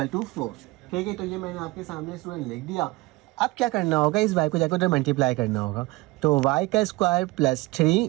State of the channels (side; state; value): left; quieter; 21.3 dB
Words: to 4, ठीक है। तो ये मैंने आपके सामने स्टूडेंट लिख दिया। अब क्या करना होगा, इस y को जाकर उधर मल्टीप्लाई करना होगा, तो y का square plus 3